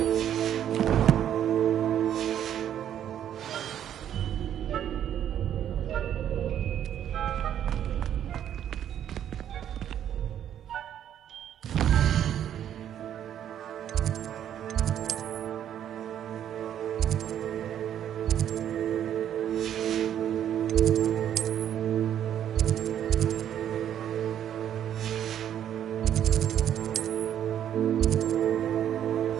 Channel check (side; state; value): left; quieter; 10.2 dB